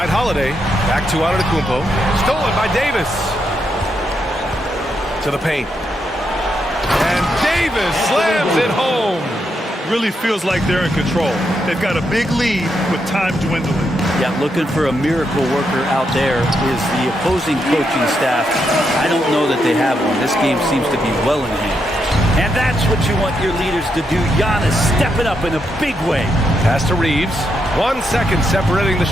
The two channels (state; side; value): normal; both; correlation 0.81